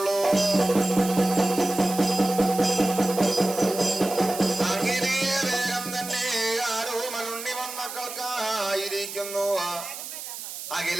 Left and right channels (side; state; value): right; noise; hiss, 9 dB below the sound